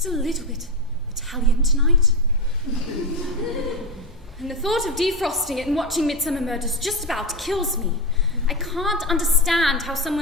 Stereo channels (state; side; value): normal; both; correlation 0.12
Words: a little bit Italian tonight? And the thought of defrosting it and watching Midsummer Murders just about kills me. I can't understand how